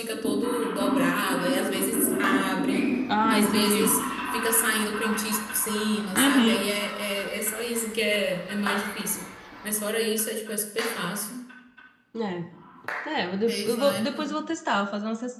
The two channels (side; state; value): both; identical; correlation 1.00